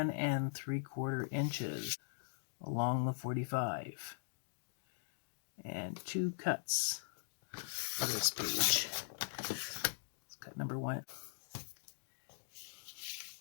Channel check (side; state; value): right; silent; digital silence